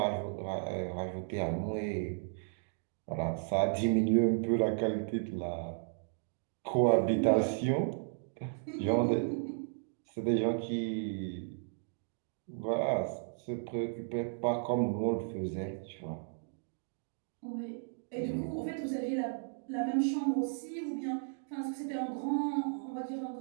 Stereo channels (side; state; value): left; silent; digital silence